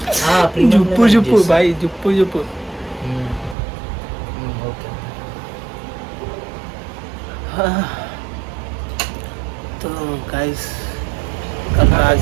జుప్పు జుప్పు భాయ్ జుప్పు జుప్పు. ఓకే तो गाइस कल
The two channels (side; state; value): left; drops out; at 3.6 s